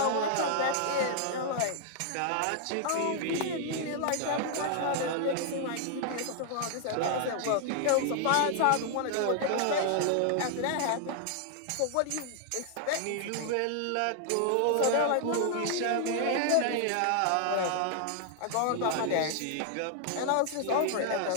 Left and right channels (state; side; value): different; both; correlation 0.00